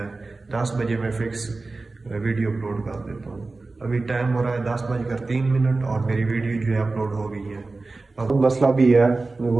10 बजे मैं फिक्स वीडियो अपलोड कर देता हूँ। अभी टाइम हो रहा है 10:03 और मेरी वीडियो जो है अपलोड हो गई है। अब मसला भी है,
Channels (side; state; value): left; quieter; 3.5 dB